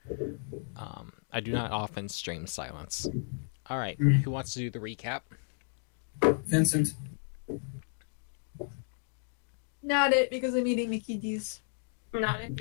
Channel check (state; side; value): silent; right; 56 dB below the other